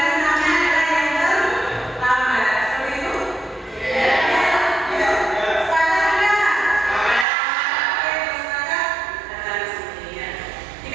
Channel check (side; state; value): left; drops out; at 7.2 s